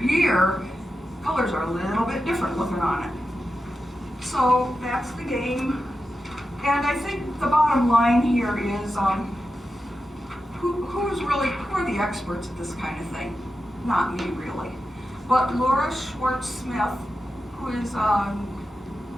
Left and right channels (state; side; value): normal; both; correlation 0.90